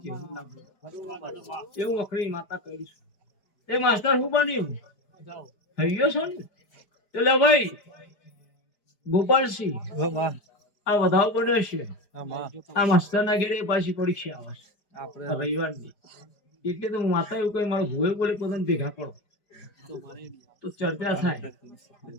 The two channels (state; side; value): late; right; 5.0 ms